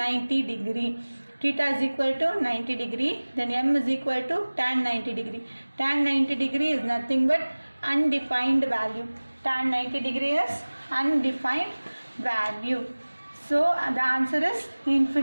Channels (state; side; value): inverted; both; correlation -1.00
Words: degree. Theta is equal to 90 degree. Then M is equal to tan 90 degree. Tan 90 degree is nothing but undefined value. Tan 90 degree is undefined value. So the answer is